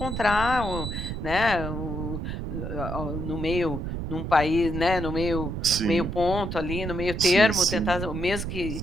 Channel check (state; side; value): noise; right; rumble, 5 dB below the sound